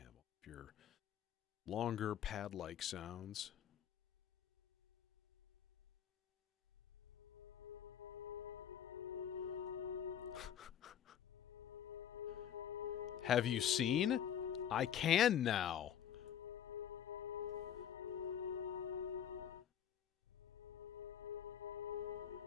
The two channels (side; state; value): right; quieter; 9.5 dB